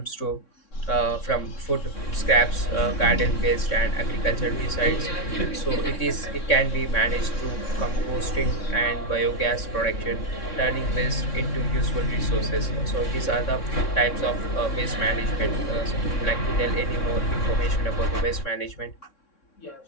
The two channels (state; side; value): late; right; 3.6 ms